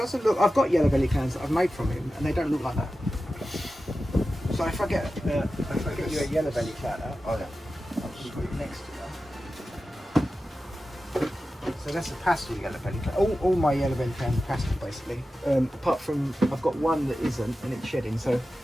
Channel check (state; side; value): normal; both; correlation 0.93